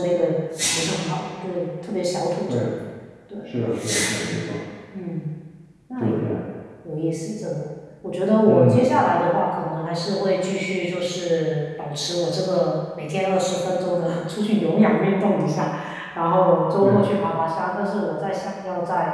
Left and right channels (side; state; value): both; identical; correlation 1.00